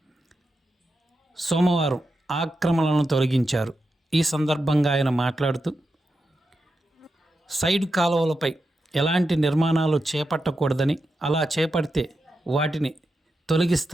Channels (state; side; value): normal; both; correlation 0.88